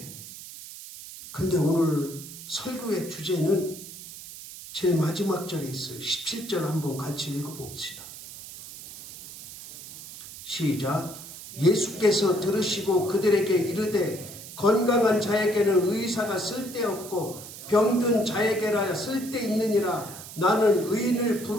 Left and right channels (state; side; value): noise; right; hiss, 14 dB below the sound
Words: 그런데 오늘 설교의 주제는 제일 마지막 절에 있어요. 17절 한번 같이 읽어봅시다. 시작. 예수께서 들으시고 그들에게 이르되 건강한 자에게는 의사가 쓸데없고 병든 자에게라 쓸데있느니라. 나는 의인을